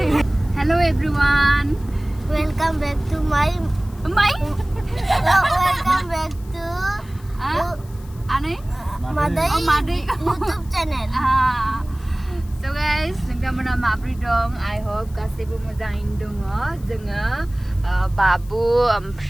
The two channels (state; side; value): noise; left; hiss, 25 dB below the sound